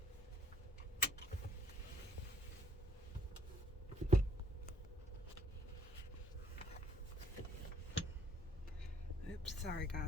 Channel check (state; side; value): normal; both; correlation 0.64